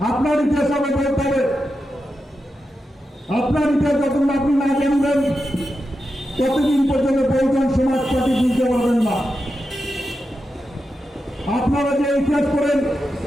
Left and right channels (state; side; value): normal; both; correlation 0.89